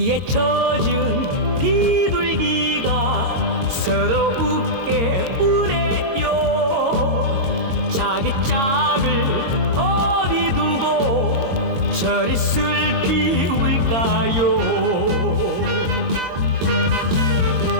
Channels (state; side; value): late; left; 22 ms